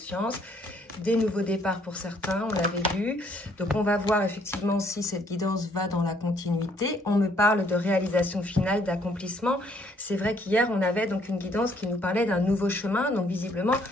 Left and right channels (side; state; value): both; normal; correlation 0.66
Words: des nouveaux départs pour certains, on l'avait vu. Donc on va voir effectivement si cette guidance va dans la continuité. On me parle de réalisation finale, d'accomplissement. C'est vrai qu'hier, on avait donc une guidance qui nous parlait d'un nouveau chemin, donc visiblement,